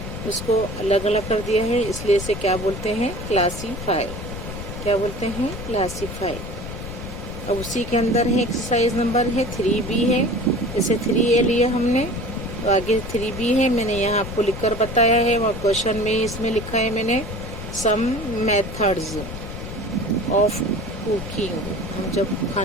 उसको अलग अलग कर दिया है, इसलिए इसे क्या बोलते हैं, क्लासीफाई। क्या बोलते हैं, क्लासीफाई। अब उसी के अंदर है एक्सरसाइज नंबर है 3B है। जैसे 3A लिया हमने, तो आगे 3B है, मैंने यहाँ आपको लिखकर बताया है, और क्वेश्चन में इसमें लिखा है मैंने सम मेथड्स ऑफ कुकिंग। हम जब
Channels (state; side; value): noise; left; rumble, 8 dB below the sound